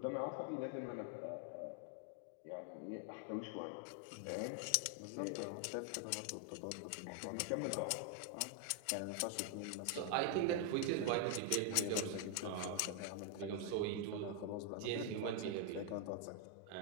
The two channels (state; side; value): different; both; correlation 0.00